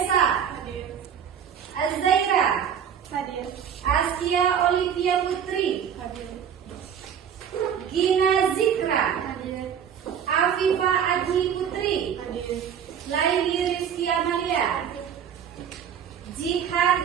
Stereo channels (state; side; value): quieter; left; 8.3 dB